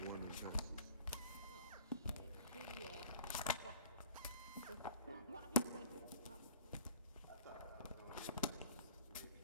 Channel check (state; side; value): inverted; both; correlation -0.48